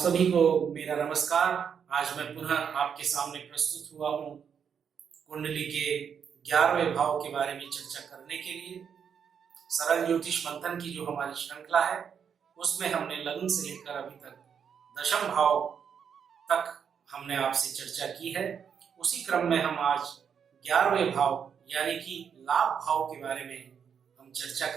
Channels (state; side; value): quieter; left; 7.4 dB